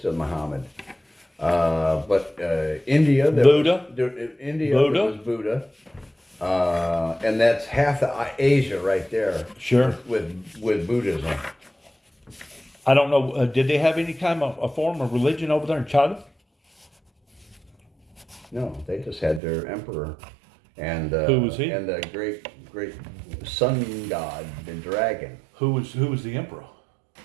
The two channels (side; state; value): left; drops out; at 19.4 s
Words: Muhammad. But India, Buddha. India Buddha. was Buddha, and that's half of Asia right there. Sure. With Buddhism. I don't know. Did they have any kind of a form of religion over there in China? No, they just had their emperor, and Who was he? And the great sun god, the dragon. Who was the emperor?